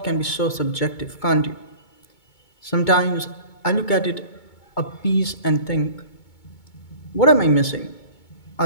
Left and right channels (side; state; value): right; late; 2.2 ms